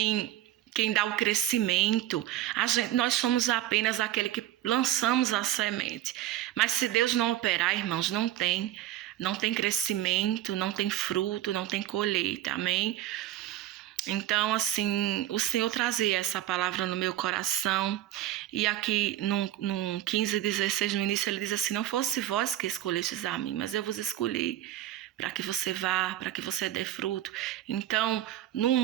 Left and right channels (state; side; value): quieter; left; 13.2 dB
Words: dá o crescimento. Nós somos apenas aquele que lançamos a semente. Mas se Deus não operar, irmãos, não tem crescimento, não tem fruto, não tem colheita, amém? Então, assim, o Senhor trazia essa palavra no meu coração. E aqui, num 15:16, no início, ele diz assim, não fosse vós que escolhestes a mim, mas eu vos escolhi para que você vá, para que você dê fruto. Então,